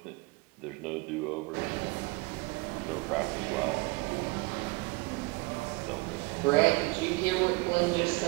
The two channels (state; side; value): quieter; left; 24.9 dB